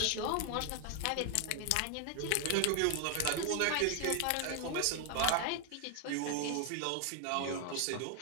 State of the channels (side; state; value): both; different; correlation 0.00